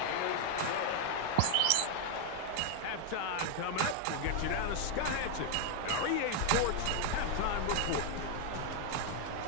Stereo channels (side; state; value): both; different; correlation 0.00